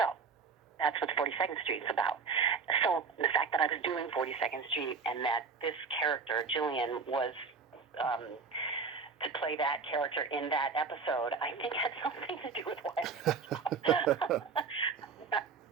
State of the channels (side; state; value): left; quieter; 5.2 dB